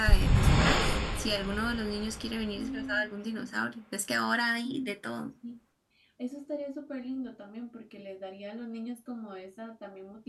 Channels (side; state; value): both; identical; correlation 1.00